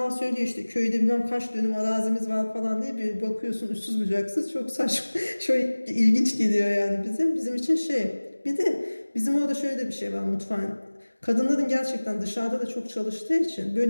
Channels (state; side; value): inverted; both; correlation -1.00